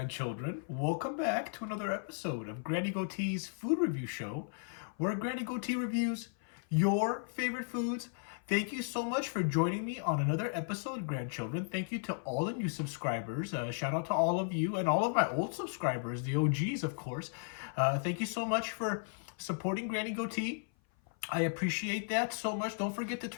Welcome back to another episode of Granny Goatee's Food Review Show, where Granny Goatee reviews your favorite foods. Thank you so much for joining me on another episode, grandchildren. Thank you to all the new subscribers. Shout out to all of you and all of my old subscribers, the OGs, of course. Thank you so much for supporting Granny Goatee. I appreciate that so much. Don't forget to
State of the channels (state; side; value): silent; right; 54 dB below the other